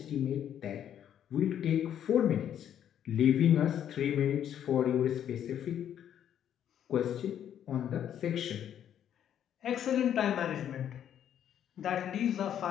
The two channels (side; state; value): right; quieter; 9.9 dB